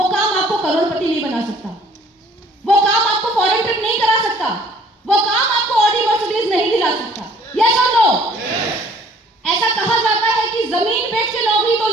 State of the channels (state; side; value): normal; both; correlation 0.56